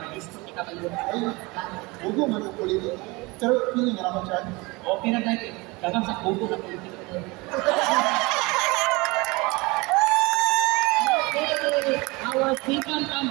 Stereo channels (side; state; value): left; quieter; 24.8 dB